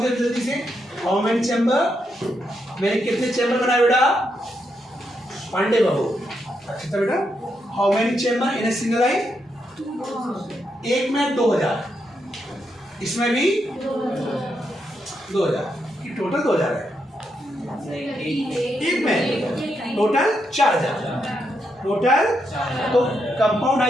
जल्दी से। How many chamber? मैंने कितने चैम्बर बनाए बेटा? पांडे बाबू, अच्छा था बेटा। How many chamber in a single eye? एक में 2000, इसमें भी 2000, टोटल 2000 है। एक में टोटल 4000 टोटल। तो कंपाउंड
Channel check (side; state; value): both; normal; correlation 0.81